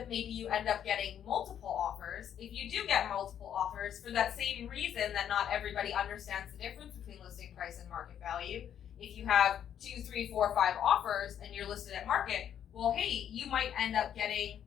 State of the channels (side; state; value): right; quieter; 9.5 dB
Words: maybe you end up getting multiple offers, if you do get multiple offers for that same reason that not everybody understands the difference between listing price and market value, if you have 2, 3, 4, 5 offers and you're listed at market, well, hey, you might end up getting